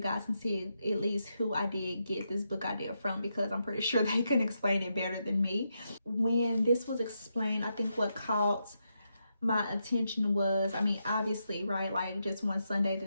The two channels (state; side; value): inverted; both; correlation -0.83